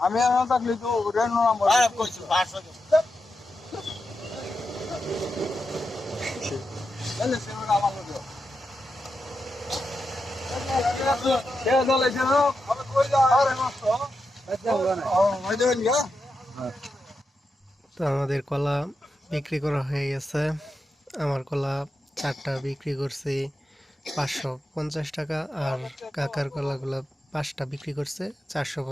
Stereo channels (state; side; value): normal; both; correlation 0.88